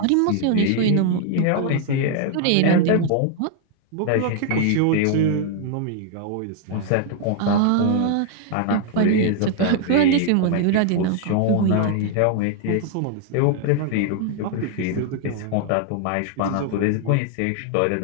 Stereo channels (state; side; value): different; both; correlation 0.00